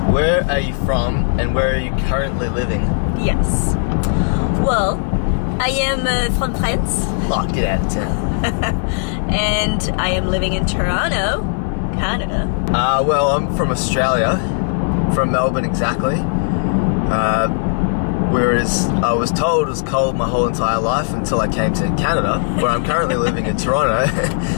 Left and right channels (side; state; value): right; silent; 66 dB below the other